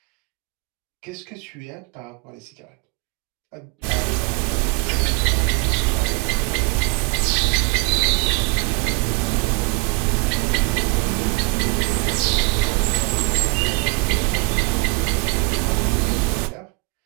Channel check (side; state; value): left; quieter; 29.6 dB